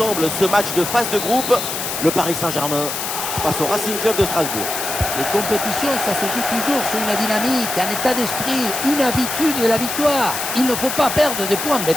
ce match de phase de groupe, le Paris Saint-Germain face au Racing Club de Strasbourg. Les compétitions, ça se joue toujours sur une dynamique, un état d'esprit, une habitude de la victoire. Il ne faut pas perdre des points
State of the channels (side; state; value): left; noise; hiss, 4 dB below the sound